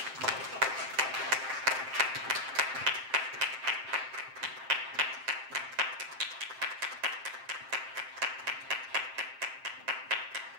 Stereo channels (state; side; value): late; left; 7.6 ms